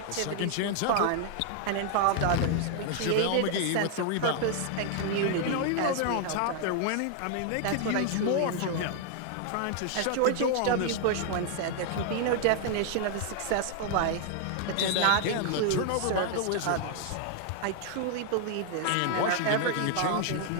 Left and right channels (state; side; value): different; both; correlation 0.00